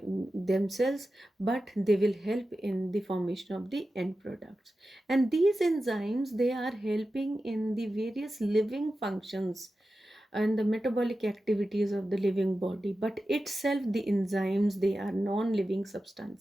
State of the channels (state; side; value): normal; both; correlation 0.93